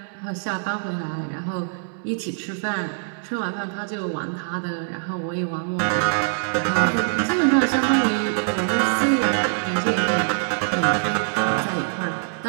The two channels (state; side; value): silent; left; digital silence